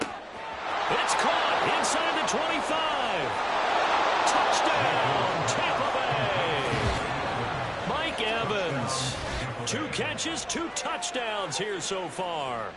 It's caught inside the 25. Touchdown, Tampa Bay. Mike Evans. 2 catches, 2 touchdowns here so far.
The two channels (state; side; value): identical; both; correlation 1.00